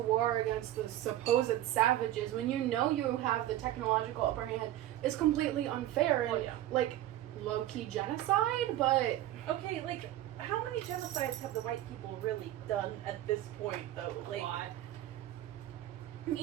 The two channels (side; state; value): left; quieter; 13.7 dB